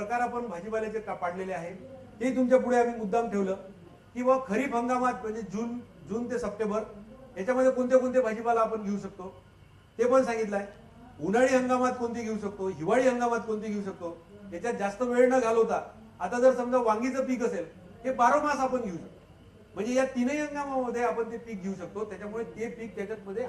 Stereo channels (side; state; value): both; identical; correlation 1.00